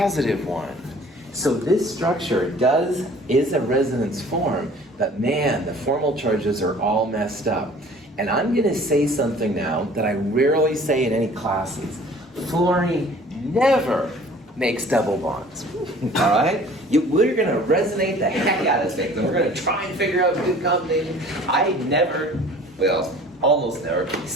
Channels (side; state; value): both; normal; correlation 0.49